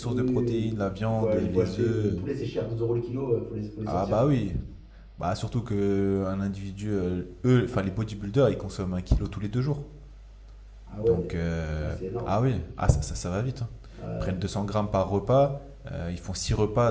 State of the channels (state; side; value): identical; both; correlation 1.00